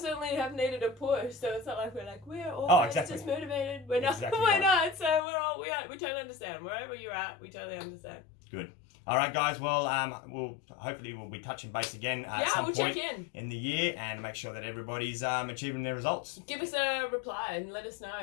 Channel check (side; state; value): right; drops out; at 5.2 s